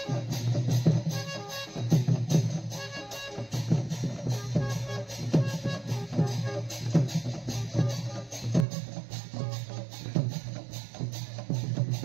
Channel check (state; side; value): drops out; left; at 8.7 s